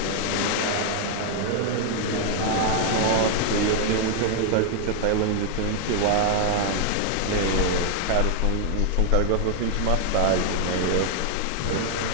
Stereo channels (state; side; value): different; both; correlation 0.00